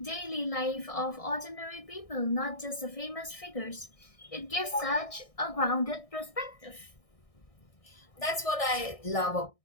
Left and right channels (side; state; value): right; late; 1.6 ms